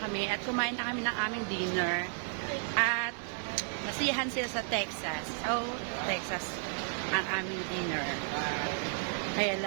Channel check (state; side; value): silent; left; 56 dB below the other